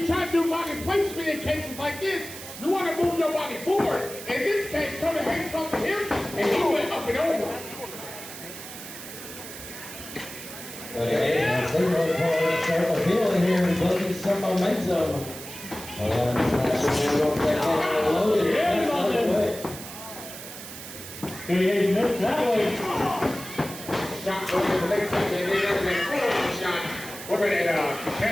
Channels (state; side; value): noise; right; hiss, 12 dB below the sound